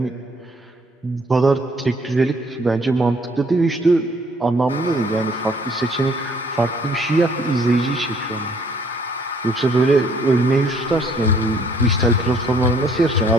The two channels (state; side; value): normal; both; correlation 0.62